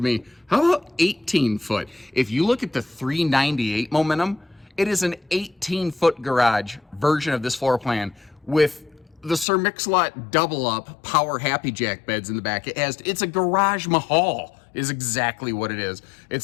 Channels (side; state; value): right; drops out; at 9.5 s